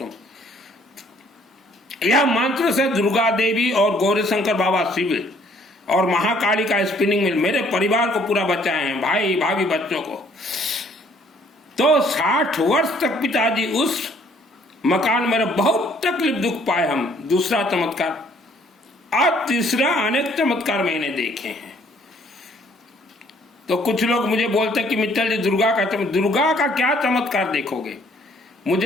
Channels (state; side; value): normal; both; correlation 0.62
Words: यह मंत्र से दुर्गा देवी और गौरी शंकर बाबा शिव और महाकाली का स्पिनिंग मिल मेरे परिवार को पूरा बचाए हैं, भाई भाभी बच्चों को। तो 60 वर्ष तक पिताजी उस मकान में बहुत तकलीफ दुख पाए हम। दूसरा चमत्कार, और तीसरा अनेक चमत्कार मैंने देखे हैं। तो कुछ लोग मुझे बोलते हैं कि मित्तल जी दुर्गा का क्या चमत्कार देखोगे।